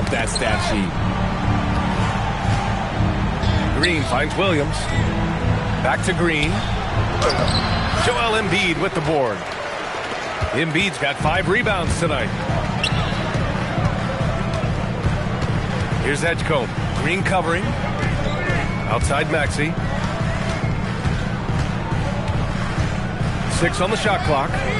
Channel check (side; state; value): both; identical; correlation 1.00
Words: that stat sheet. Green finds Williams. Back to Green. Joel Embiid with the board. Embiid's got 5 rebounds tonight. Here's Edgecombe. Green covering. Outside Maxey. 6 on the shot clock.